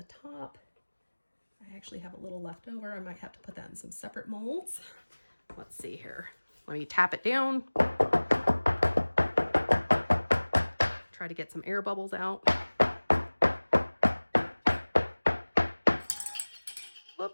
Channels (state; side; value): inverted; both; correlation -1.00